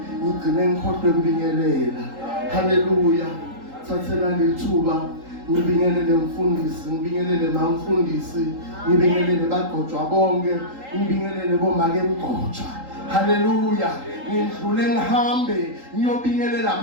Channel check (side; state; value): left; late; 3.8 ms